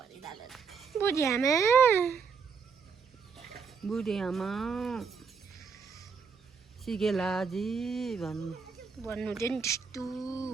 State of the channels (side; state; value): left; quieter; 5.7 dB